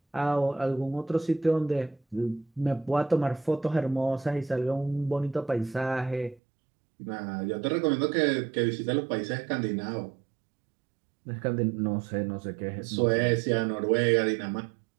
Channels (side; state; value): left; drops out; at 6.4 s